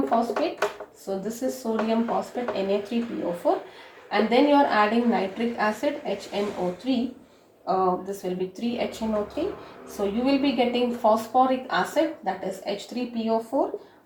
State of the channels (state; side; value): identical; both; correlation 1.00